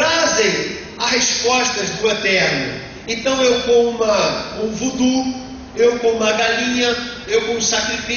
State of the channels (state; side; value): identical; both; correlation 1.00